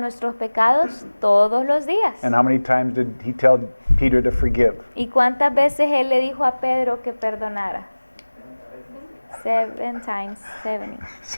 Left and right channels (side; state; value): both; inverted; correlation -1.00